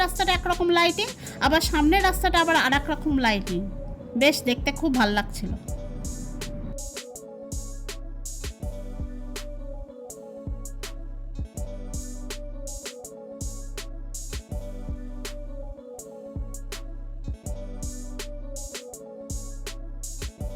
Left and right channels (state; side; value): identical; both; correlation 1.00